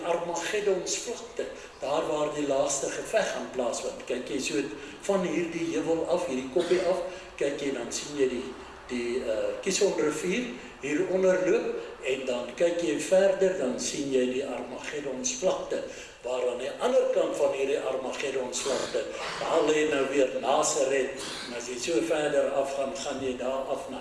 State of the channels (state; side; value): identical; both; correlation 1.00